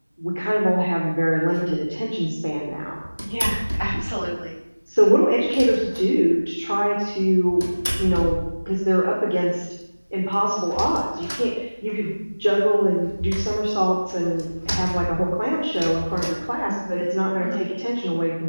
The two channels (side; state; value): both; inverted; correlation -1.00